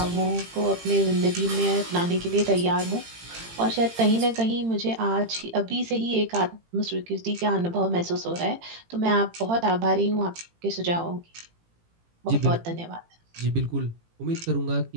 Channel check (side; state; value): left; late; 18 ms